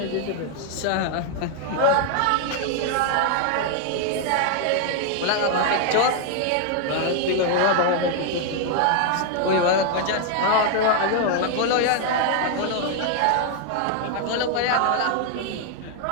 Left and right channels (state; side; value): different; both; correlation 0.00